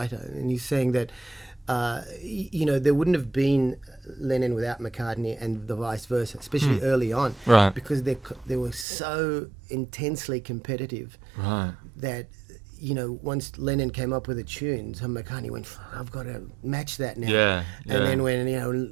and he's saying that there wouldn't have been Lennon without McCartney, and the vice versa, especially early on, Right. because they were so intensely competitive Right. that once Lennon came up with a tune, so McCartney went, I've got to match that now. Yeah. And then when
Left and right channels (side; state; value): left; drops out; at 8.8 s